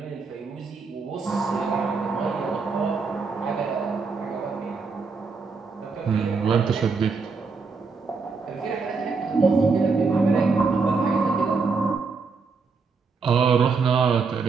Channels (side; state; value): left; quieter; 4.7 dB